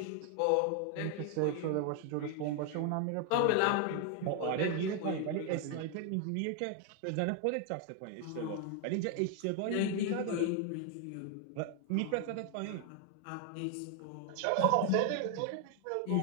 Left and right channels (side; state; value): both; different; correlation 0.00